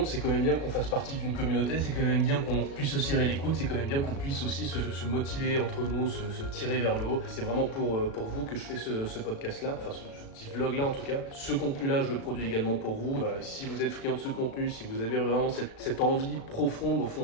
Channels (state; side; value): late; right; 36 ms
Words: c'est quand même bien qu'on fasse partie d'une communauté, c'est quand même bien qu'on puisse se serrer les coudes, c'est quand même bien qu'on puisse aussi se motiver entre nous, se tirer vers le haut. C'est vraiment pour vous que je fais ce podcast-là, enfin ce petit vlog-là en tout cas. Ce contenu contenu-là, je le produis également pour vous. Voilà, si vous êtes friand de ce contenu, si vous avez vraiment cette envie profonde au